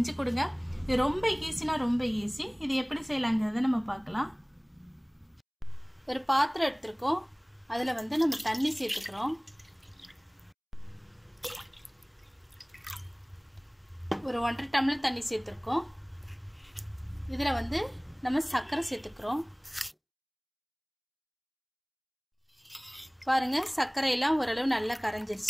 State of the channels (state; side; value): identical; both; correlation 1.00